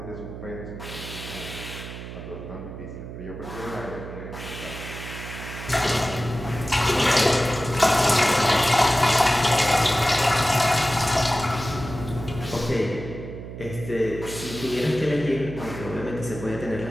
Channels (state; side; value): noise; right; hum, 10 dB below the sound